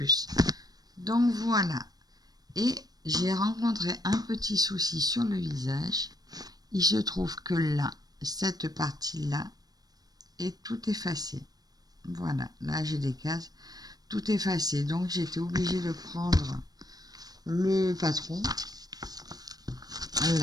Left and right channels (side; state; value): left; late; 0.19 ms